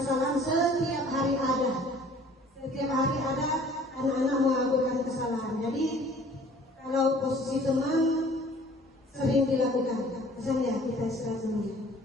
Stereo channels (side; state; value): both; normal; correlation 0.52